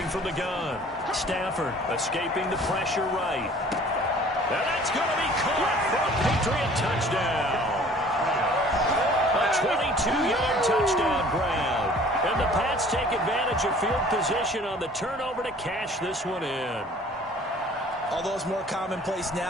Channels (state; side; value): normal; both; correlation 0.51